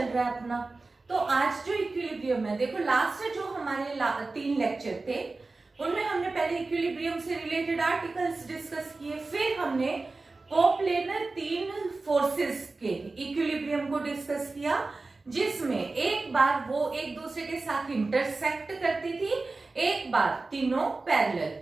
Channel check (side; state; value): left; quieter; 3.5 dB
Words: रहा है अपना। तो आज जो इक्विलिब्रियम है, देखो लास्ट जो हमारे 3 लेक्चर थे उनमें हमने पहले इक्विलिब्रियम से रिलेटेड आर्टिकल्स डिस्कस किए, फिर हमने कोप्लेनर 3 फोर्सेस के इक्विलिब्रियम को डिस्कस किया, जिसमें एक बार वो एक दूसरे के साथ इंटरसेक्ट करती थी, एक बार तीनों पैरेलल